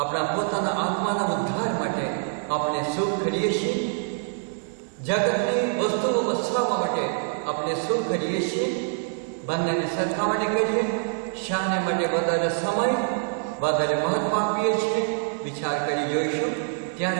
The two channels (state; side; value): silent; left; 61 dB below the other